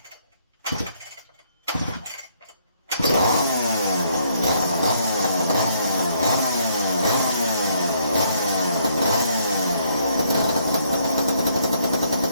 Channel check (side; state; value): both; inverted; correlation -0.69